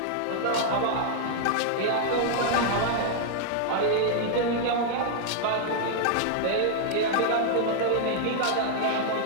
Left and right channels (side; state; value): both; different; correlation -0.01